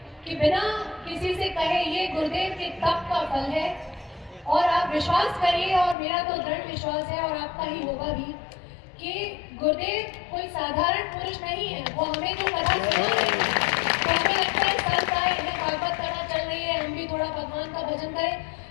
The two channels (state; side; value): drops out; right; at 6.0 s